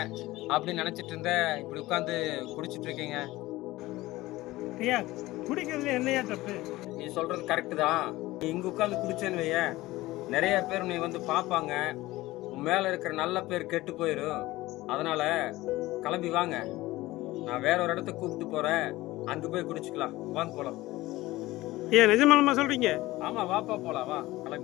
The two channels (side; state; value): right; quieter; 18.3 dB